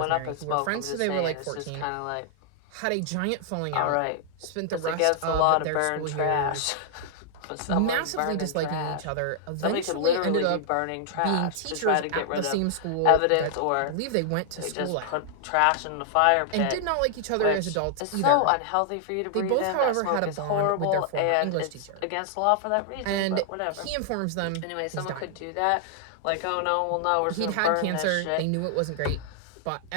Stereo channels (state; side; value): different; both; correlation -0.01